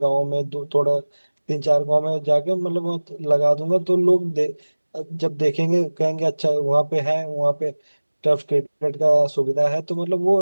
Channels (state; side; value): inverted; both; correlation -1.00